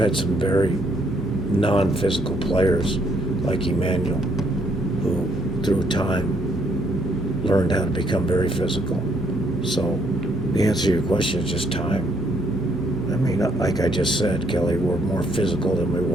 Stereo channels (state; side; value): normal; both; correlation 0.70